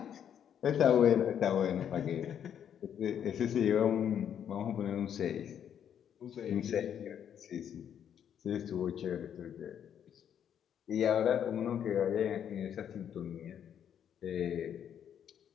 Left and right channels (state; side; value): quieter; right; 9.0 dB